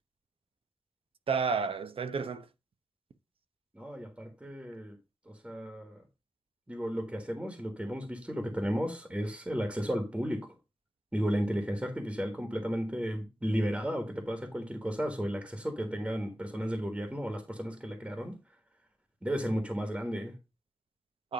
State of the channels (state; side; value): normal; both; correlation 0.86